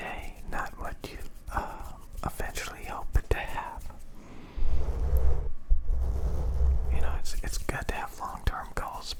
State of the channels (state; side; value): identical; both; correlation 1.00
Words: not what you eventually hope to have. You know, it's good to have long-term goals,